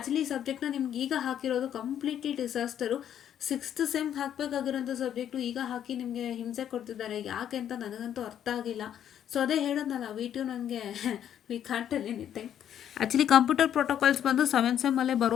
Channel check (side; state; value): right; quieter; 10.0 dB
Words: ಈ ಸಬ್ಜೆಕ್ಟ್ನ ನಿಮ್ಗೆ ಈಗ ಹಾಕಿರೋದು ಕಂಪ್ಲೀಟ್ಲಿ ಡಿಸಾಸ್ಟರು. 6th ಸೆಮ್ ಹಾಕಬೇಕಾಗಿರೋಂಥ ಸಬ್ಜೆಕ್ಟು ಈಗ ಹಾಕಿ ನಿಮಗೆ ಹಿಂಸೆ ಕೊಡ್ತಿದ್ದಾರೆ. ಯಾಕೆ ಅಂತ ನನಗಂತೂ ಅರ್ಥ ಆಗಿಲ್ಲ. ಸೊ ಅದೇ ಹೇಳೋದಲ್ಲ, V2 ನನಗೆ we can't tell anything. Actually computer protocols ಬಂದು 7th ಸೆಮ್ಮಲ್ಲೇ